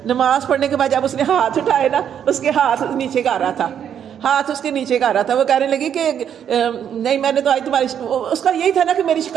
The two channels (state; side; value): quieter; left; 8.9 dB